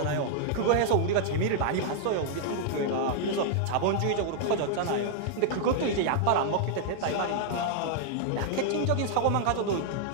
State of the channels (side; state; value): both; different; correlation -0.01